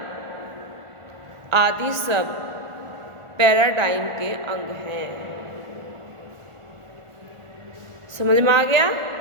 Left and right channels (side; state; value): left; late; 1.2 ms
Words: आदि सब पैराडाइम के अंग हैं। समझ में आ गया?